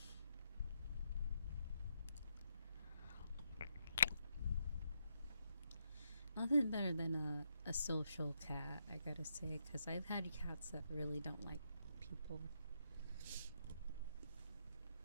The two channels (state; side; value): inverted; both; correlation -0.79